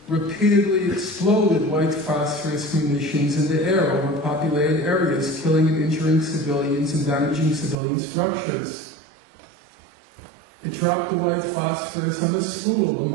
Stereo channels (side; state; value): left; drops out; at 7.8 s